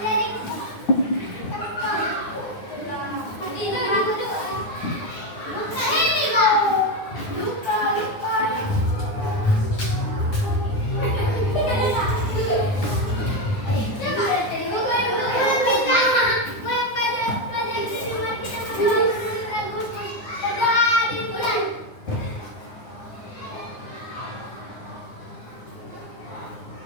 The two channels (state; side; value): late; right; 9.6 ms